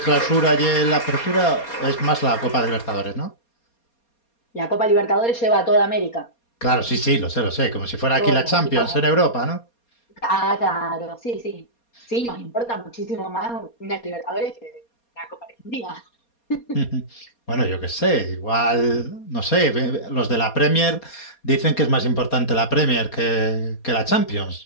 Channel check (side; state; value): right; late; 4.2 ms